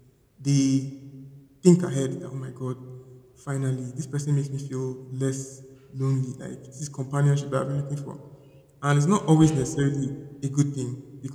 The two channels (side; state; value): both; identical; correlation 1.00